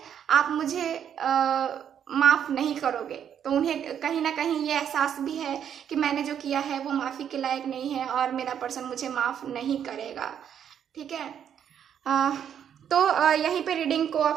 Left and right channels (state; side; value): quieter; left; 8.9 dB